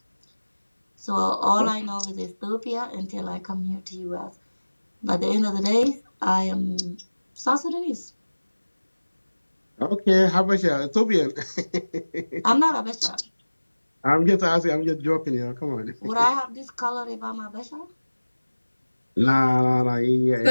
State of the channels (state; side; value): inverted; both; correlation -1.00